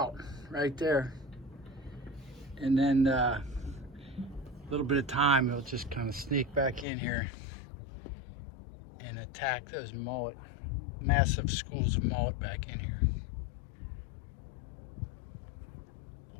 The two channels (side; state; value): right; drops out; at 6.9 s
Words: right there. And then a little bit of time, he'll just kind of sneak back in here and attack those mullet, massive schools of mullet back in here.